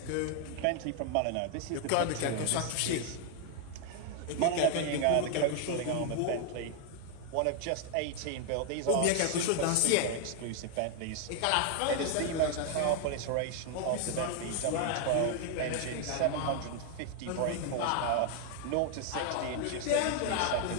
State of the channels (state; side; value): different; both; correlation 0.00